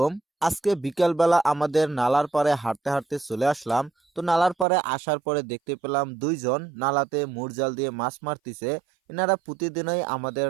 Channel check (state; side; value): drops out; left; at 4.7 s